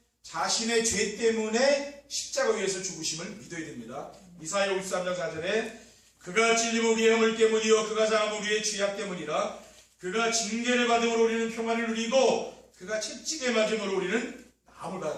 자신의 죄 때문에 십자가 위에서 죽으심을 믿어야 됩니다. 이사야 53장 4절에 그가 찔림은 우리의 허물 때문이요 그가 상함은 우리의 죄악 때문이라 그가 징계를 받음으로 우리는 평안을 누리고 그가 채찍에 맞음으로 우리는 나음을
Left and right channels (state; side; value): identical; both; correlation 1.00